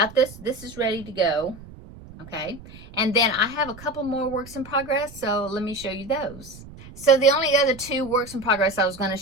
this. This is ready to go. Okay, and then I have a couple more works in progress, so let me show you those. So the only other two works in progress I was going to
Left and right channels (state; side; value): noise; right; rumble, 18 dB below the sound